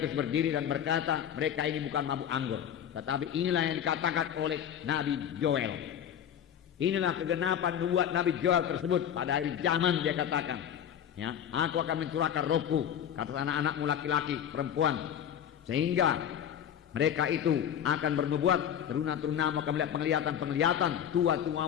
berdiri dan berkata, mereka ini bukan mabuk anggur, tetapi inilah yang dikatakan oleh Nabi Joel. Inilah kegenapan nubuat Nabi Joel tersebut pada akhir zaman. Dia katakan, ya, aku akan mencurahkan rohku ke atas anak-anakmu laki-laki, perempuan, sehingga mereka itu akan bernubuat, teruna-terunamu akan melihat penglihatan-penglihatan,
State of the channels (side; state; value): right; quieter; 9.4 dB